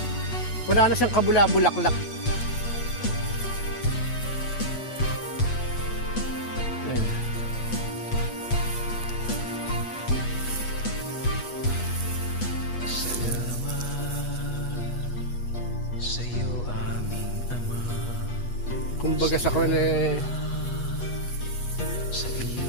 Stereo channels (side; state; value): right; late; 8.3 ms